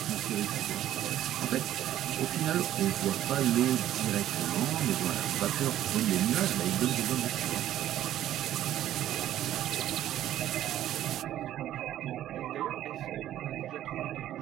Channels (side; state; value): left; quieter; 12.4 dB